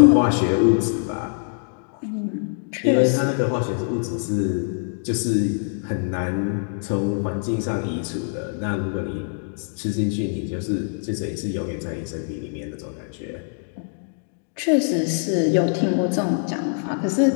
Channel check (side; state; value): right; silent; digital silence